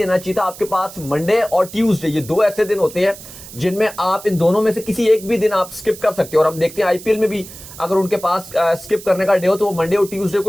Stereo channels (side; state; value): right; noise; hiss, 16 dB below the sound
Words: चाहिए था। आपके पास मंडे और ट्यूसडे ये दो ऐसे दिन होते हैं जिनमें आप इन दोनों में से किसी एक भी दिन आप स्किप कर सकते हो। और हम देखते हैं आईपीएल में भी अगर उनके पास स्किप करने का डे हो तो वो मंडे और ट्यूसडे